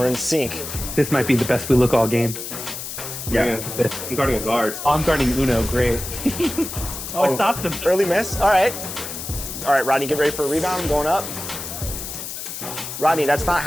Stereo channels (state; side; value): noise; left; hiss, 8 dB below the sound